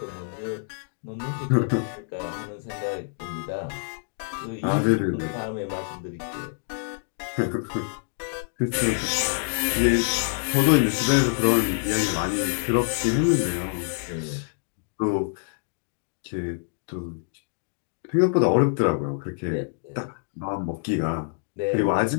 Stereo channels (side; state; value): right; silent; digital silence